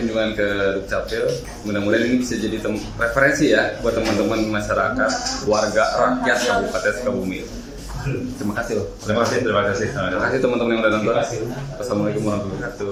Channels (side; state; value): both; identical; correlation 1.00